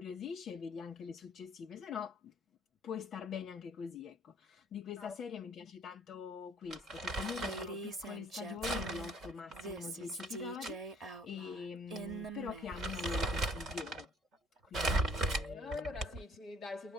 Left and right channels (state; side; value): normal; both; correlation 0.58